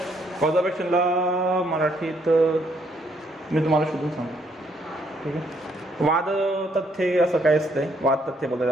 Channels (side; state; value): both; normal; correlation 0.70